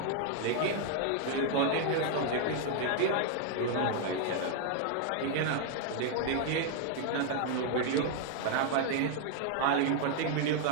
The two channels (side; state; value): both; different; correlation 0.00